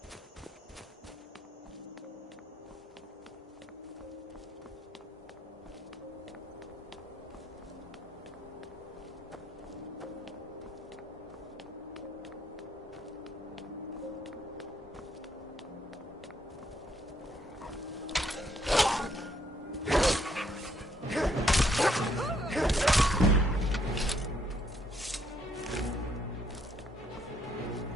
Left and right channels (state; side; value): normal; both; correlation 0.71